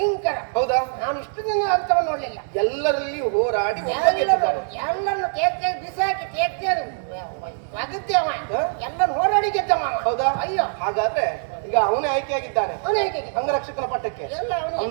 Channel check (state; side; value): silent; left; digital silence